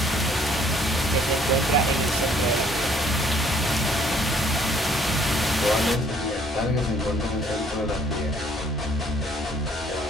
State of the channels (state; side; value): normal; both; correlation 0.61